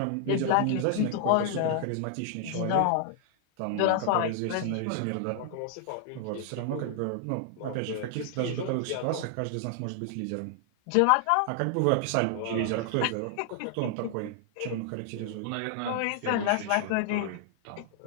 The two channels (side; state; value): both; different; correlation -0.01